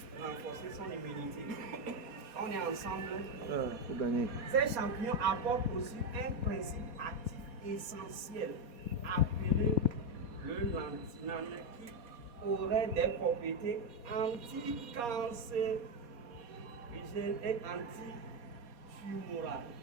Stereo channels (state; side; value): late; left; 4.2 ms